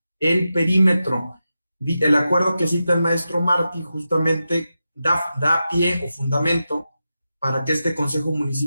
el perímetro. El acuerdo que cita el maestro Martí justamente da pie o fundamento para que este Consejo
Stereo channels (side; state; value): both; inverted; correlation -0.90